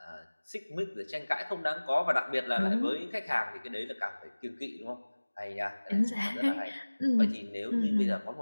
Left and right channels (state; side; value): inverted; both; correlation -1.00